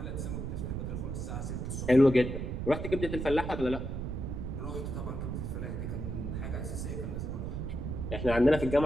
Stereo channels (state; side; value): noise; right; rumble, 4 dB below the sound